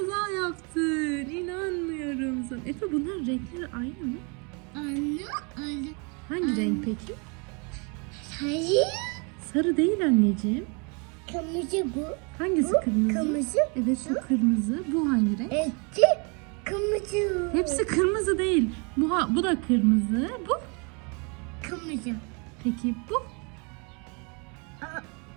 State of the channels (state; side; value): quieter; left; 33.4 dB